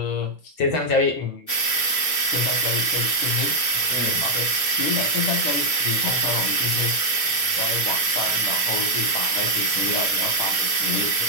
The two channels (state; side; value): late; right; 6.5 ms